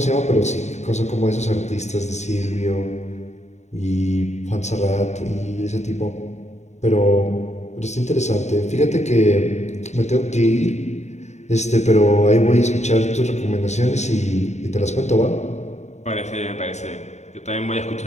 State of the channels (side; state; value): right; late; 0.33 ms